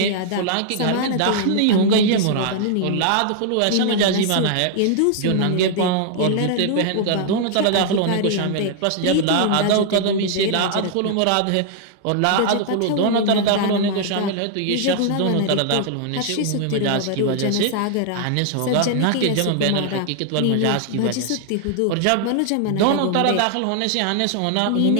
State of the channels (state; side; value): different; both; correlation 0.00